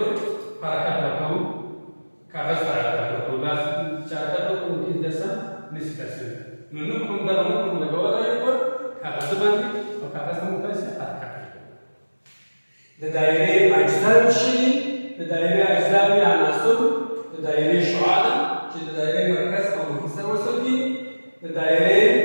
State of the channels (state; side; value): inverted; both; correlation -1.00